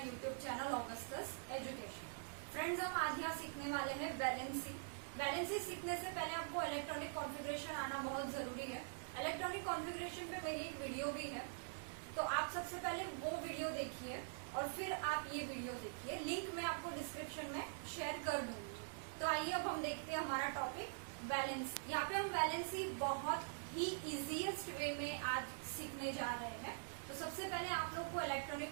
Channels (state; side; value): silent; left; digital silence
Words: YouTube channel Augustus education. Friends, हम आज यहाँ सीखने वाले हैं वैलेंसी। वैलेंसी सीखने से पहले आपको इलेक्ट्रॉनिक कॉन्फ़िगरेशन आना बहुत जरूरी है। इलेक्ट्रॉनिक कॉन्फ़िगरेशन पे मेरी एक वीडियो भी है, तो आप सबसे पहले वो वीडियो देखिए और फिर आप ये वीडियो देखिए। लिंक मैं आपको डिस्क्रिप्शन में शेयर कर दूंगी। तो आइए अब हम देखते हैं हमारा टॉपिक वैलेंसी। यहाँ पे हम वैलेंसी बहुत ही इजीएस्ट वे में आज सीखने जा रहे हैं। तो सबसे पहले आप लोग को इलेक्ट्रॉनिक